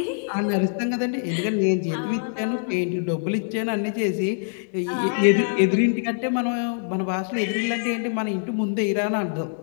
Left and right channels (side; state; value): right; silent; 62 dB below the other